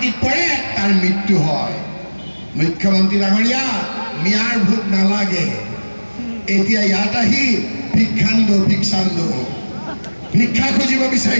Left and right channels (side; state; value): both; inverted; correlation -1.00